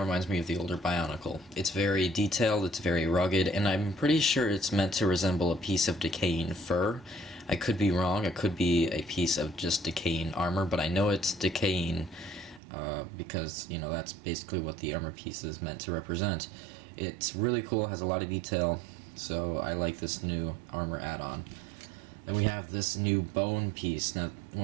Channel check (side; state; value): left; drops out; at 12.6 s